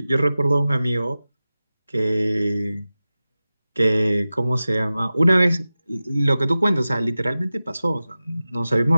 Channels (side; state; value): both; inverted; correlation -0.95